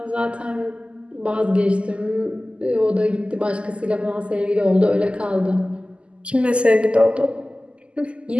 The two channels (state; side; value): late; left; 0.054 ms